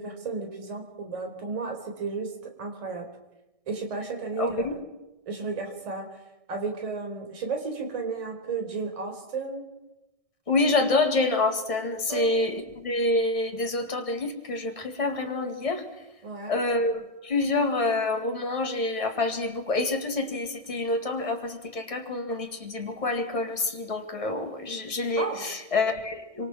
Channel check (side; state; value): left; late; 1.6 ms